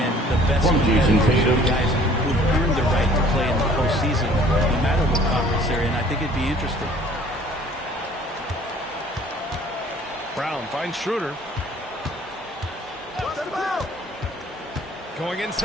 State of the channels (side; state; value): both; normal; correlation 0.54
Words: the best competitors, the guys who've earned the right to play in the postseason, no matter what conference they're in? I think it'd be interesting. Brown finds Schroeder. Going